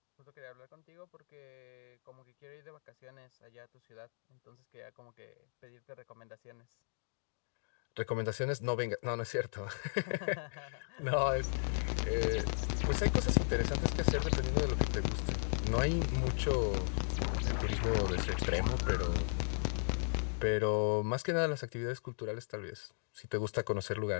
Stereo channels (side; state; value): right; silent; digital silence